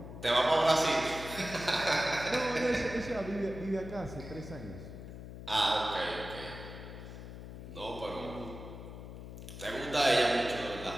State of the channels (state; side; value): noise; left; hum, 11 dB below the sound